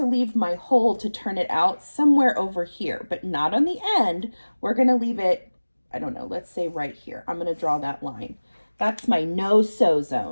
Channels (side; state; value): both; inverted; correlation -1.00